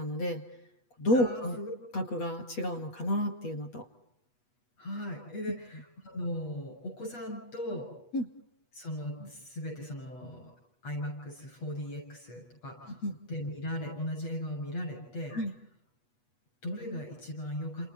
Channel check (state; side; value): late; right; 8.2 ms